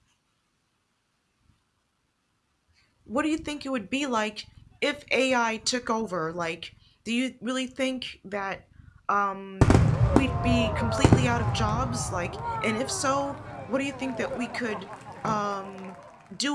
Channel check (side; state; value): both; identical; correlation 1.00